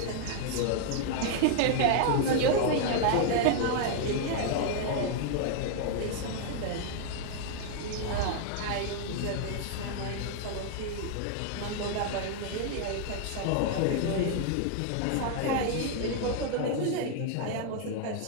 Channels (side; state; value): both; different; correlation 0.00